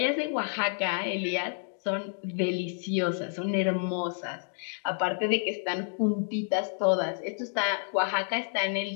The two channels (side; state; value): right; silent; 58 dB below the other